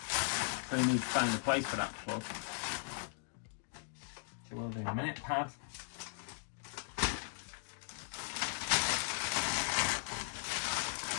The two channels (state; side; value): silent; right; digital silence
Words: So you need to find a place for that plug. So we'll do a minute, pad.